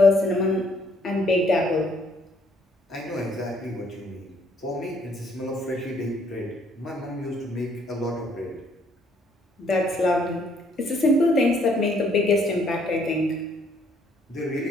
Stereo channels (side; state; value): both; normal; correlation 0.66